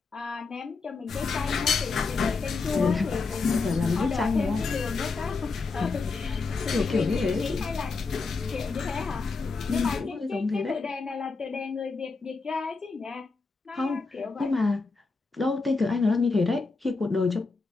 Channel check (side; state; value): right; quieter; 4.2 dB